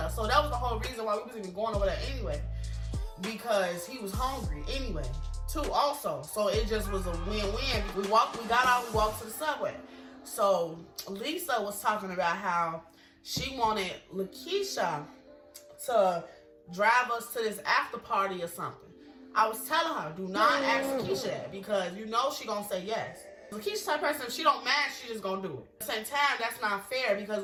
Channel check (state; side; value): identical; both; correlation 1.00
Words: So that was the whole reason why we was even going over there anyway, because he was hungry anyway, too, also. So it just was a win-win. We got out, we walked to the Subway. So Lisa was talking about how she wanted Lakeisha to drive us to this after party or something. I was telling her, do not ask Lakeisha that, because you know she gonna say yes. Lakeisha's type of person, if she don't match, she just gonna do it. At the same time, that's not fair,